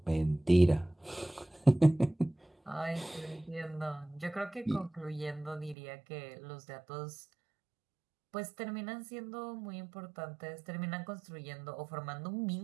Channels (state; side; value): drops out; left; at 5.8 s